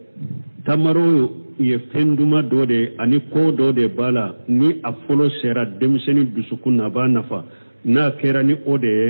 tamaro ye fenduma do de ani ko do de bala ni a folo sera demseni dusukuna ba nafa na kera ni ode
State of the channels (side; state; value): both; inverted; correlation -1.00